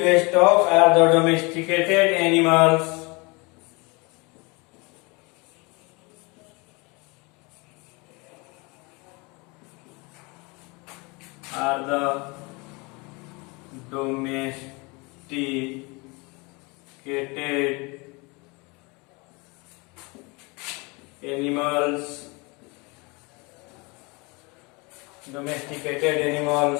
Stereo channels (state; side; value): quieter; right; 27.8 dB